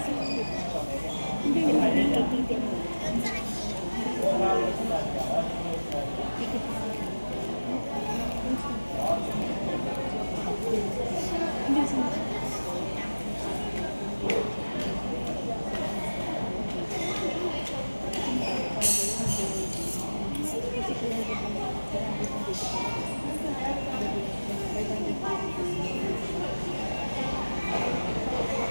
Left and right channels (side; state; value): both; inverted; correlation -1.00